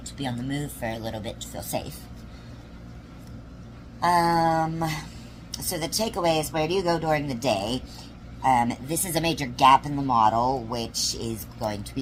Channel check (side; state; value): both; identical; correlation 1.00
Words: to be on the move for a little bit to feel safe. So the takeaway is, where do you go during the day? This is a major gap in the model, which is going to be